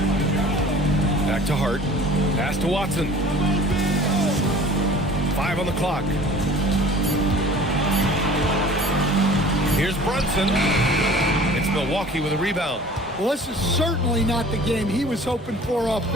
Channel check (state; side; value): normal; both; correlation 0.46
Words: Back to Hart. Pass to Watson. 5 on the clock. Here's Brunson. It's Milwaukee with a rebound. Well, this is certainly not the game he was hoping for